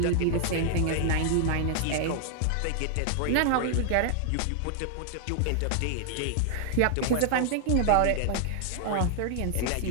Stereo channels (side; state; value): both; different; correlation 0.00